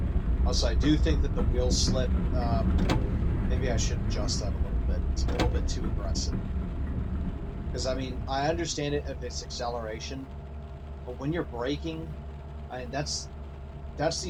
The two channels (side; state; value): both; identical; correlation 1.00